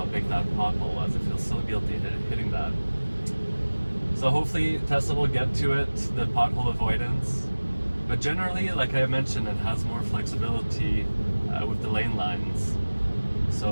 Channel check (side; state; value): both; inverted; correlation -1.00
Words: big that pothole was. I feel so guilty hitting that. So hopefully Tesla will get to it, the pothole avoidance. But generally, like I mentioned, it has more flexibility with the lane lines.